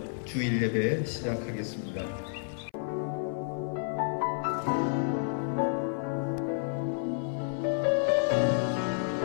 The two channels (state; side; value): silent; right; 58 dB below the other